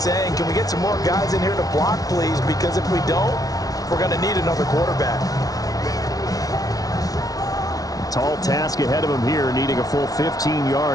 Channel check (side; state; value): right; late; 0.18 ms